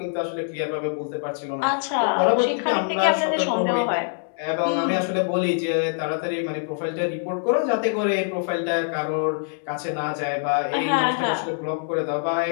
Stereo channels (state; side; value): silent; right; digital silence